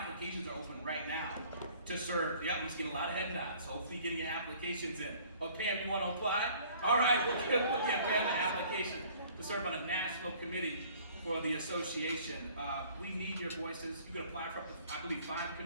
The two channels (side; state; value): both; inverted; correlation -0.54